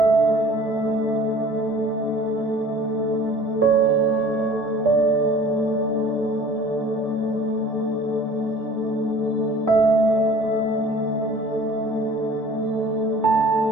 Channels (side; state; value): both; normal; correlation 0.47